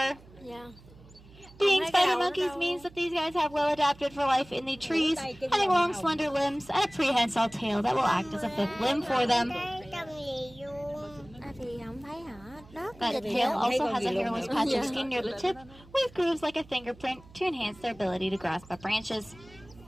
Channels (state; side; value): noise; right; hum, 23 dB below the sound